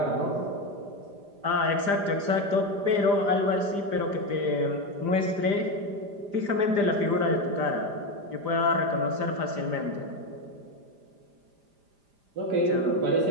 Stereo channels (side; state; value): left; late; 5.0 ms